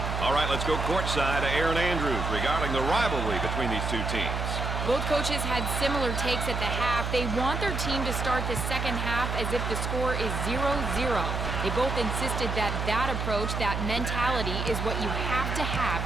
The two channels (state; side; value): noise; right; hum, 2 dB below the sound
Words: All right, let's go courtside to Erin Andrews regarding the rivalry between these two teams. Both coaches had similar takes at the half. They want their team to start the second half as if the score is 0-0. They both insisted that that approach, that mentality, is what you have to